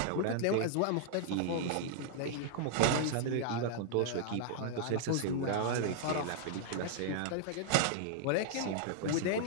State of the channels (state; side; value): different; both; correlation -0.01